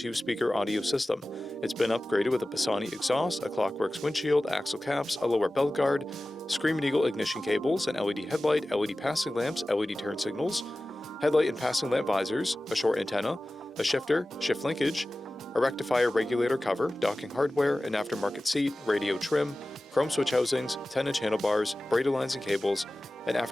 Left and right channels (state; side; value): normal; both; correlation 0.96